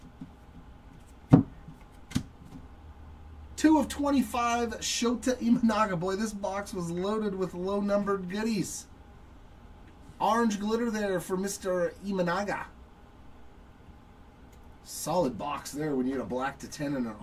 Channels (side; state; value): both; identical; correlation 1.00